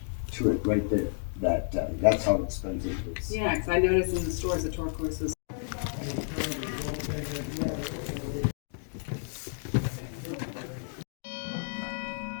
to it right there. That's how expensive it is. Yeah, 'cause I noticed in the stores that turquoise was.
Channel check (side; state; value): right; silent; digital silence